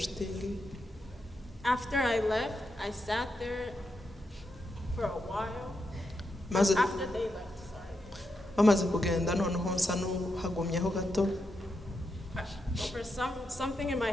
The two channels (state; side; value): normal; both; correlation 0.84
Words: After I left, I sat there for a while. After they left, sorry. Bamaze kugenda noneho nsa n'uhagumyeho gato. For something in my